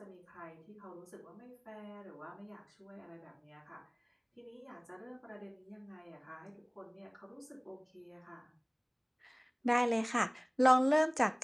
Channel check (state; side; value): identical; both; correlation 1.00